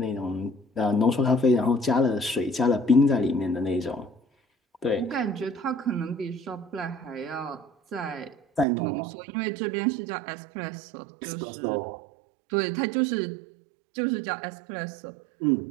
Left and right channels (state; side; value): drops out; left; at 8.7 s